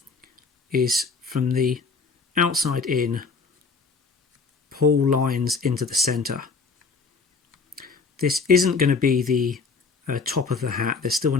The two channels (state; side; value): quieter; right; 4.7 dB